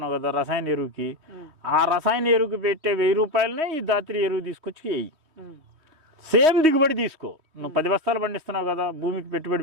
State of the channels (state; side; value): late; left; 3.2 ms